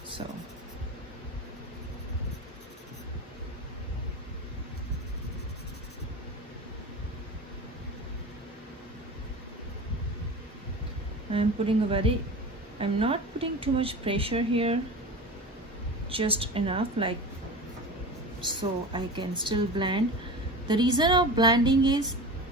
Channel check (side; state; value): both; normal; correlation 0.31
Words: So I'm not putting too much pressure here, just enough, like so I can still blend. The reason of blending is